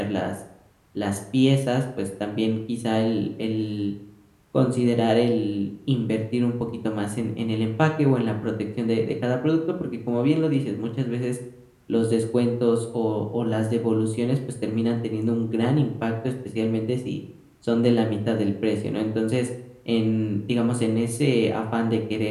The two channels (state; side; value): identical; both; correlation 1.00